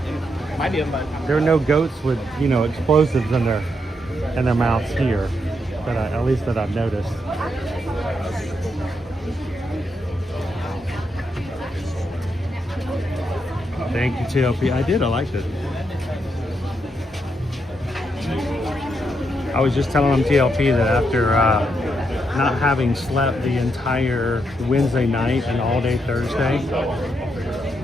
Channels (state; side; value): normal; both; correlation 0.80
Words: There are no goats with, you know, explosives in their mouths here, that at least that I've noticed. Thank you, TLP. I did. I liked it. I was just telling them, TLP, that after not having slept the entire Wednesday night and all day Thursday,